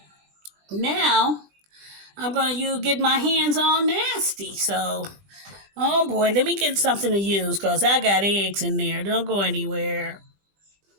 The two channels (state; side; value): late; left; 20 ms